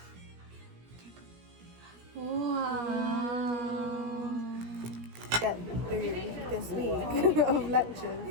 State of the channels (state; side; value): late; left; 17 ms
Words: Wow. get through this week of